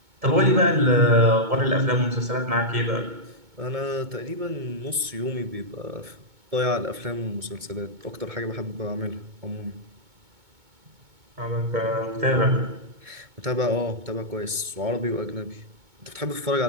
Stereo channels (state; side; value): late; left; 2.2 ms